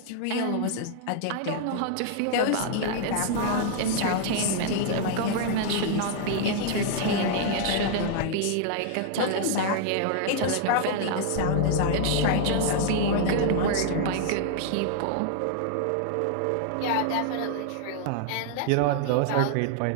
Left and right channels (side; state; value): both; different; correlation 0.00